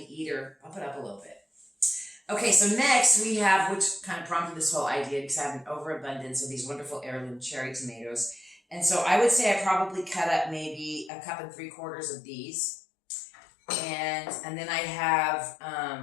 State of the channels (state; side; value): drops out; right; at 11.1 s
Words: eater, bump it up a little bit. Okay, so next we have, which kind of prompted this whole idea, because I have an overabundance of these wonderful heirloom cherry tomatoes. And so I would say I probably cut up maybe 1 3/4 of these. And then I have